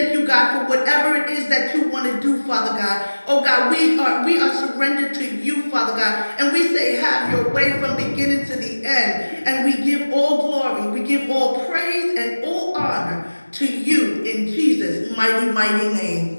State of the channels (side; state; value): both; inverted; correlation -1.00